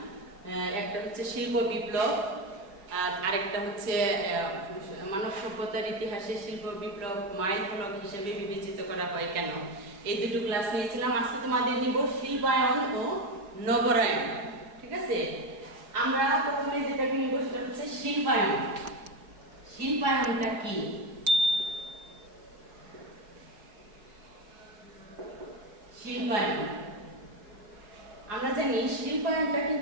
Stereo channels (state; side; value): late; left; 4.9 ms